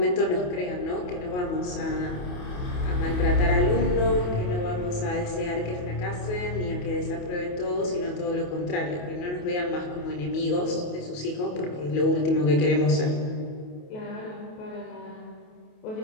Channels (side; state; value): right; late; 28 ms